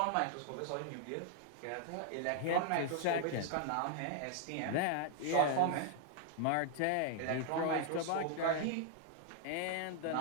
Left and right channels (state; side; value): different; both; correlation 0.00